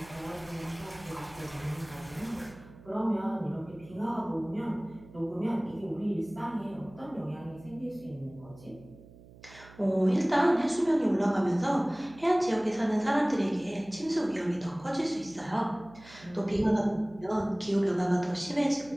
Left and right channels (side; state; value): right; noise; hum, 21 dB below the sound